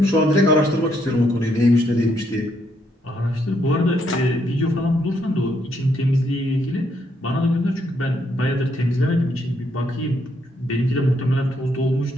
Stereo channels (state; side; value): normal; both; correlation 0.74